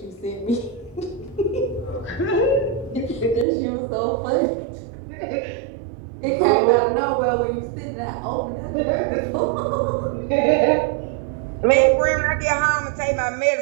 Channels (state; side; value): drops out; left; at 3.5 s